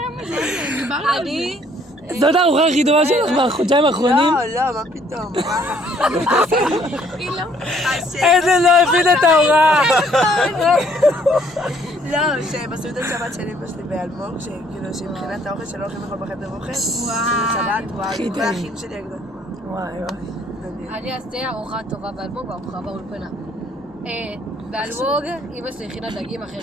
מזה, דיברנו על זה. זאת הארוחה הכי טובה שלך בחודשיים האחרונים? לא, מה פתאום? היא לא. עדן לא הבין את ההוראה. לא, שבסעודת שבת של אמא שלי באלמוג, שכאילו שמבחינת האוכל שלא הולכים לאכול בחדר אוכל, שבת, וואי, כל האחים שלי הגדול. וואי וואי. אני אעשה ארוחה טובה באלמוג וארוחה באולפנה. באלמוג, אמא שלי הכינה דגים אחרי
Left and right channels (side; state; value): both; normal; correlation 0.63